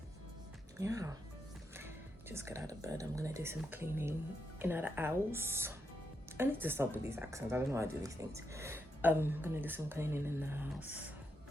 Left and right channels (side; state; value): both; normal; correlation 0.82